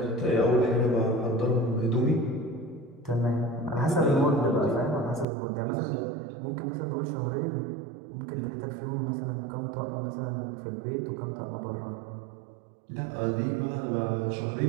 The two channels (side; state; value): left; drops out; at 5.2 s